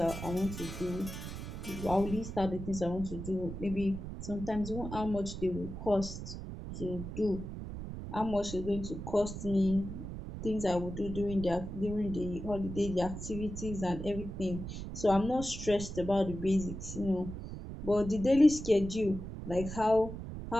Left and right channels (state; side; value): noise; right; rumble, 8 dB below the sound